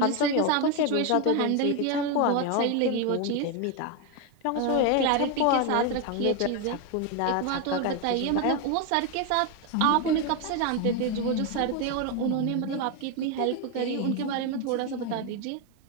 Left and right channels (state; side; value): different; both; correlation 0.02